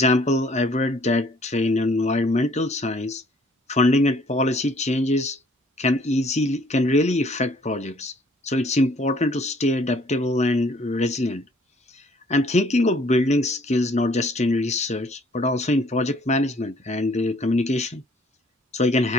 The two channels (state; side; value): normal; both; correlation 0.59